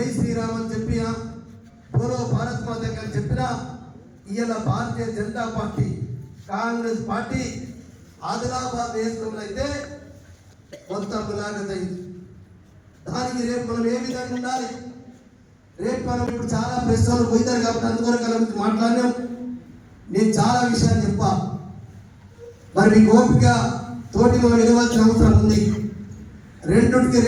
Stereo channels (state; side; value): identical; both; correlation 1.00